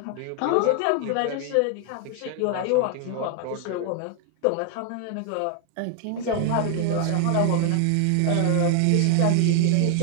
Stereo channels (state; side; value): different; both; correlation 0.00